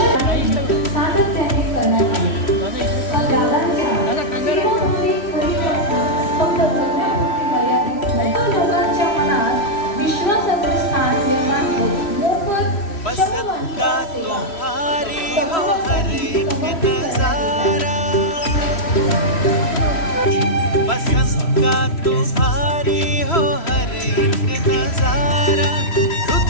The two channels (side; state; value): right; late; 3.1 ms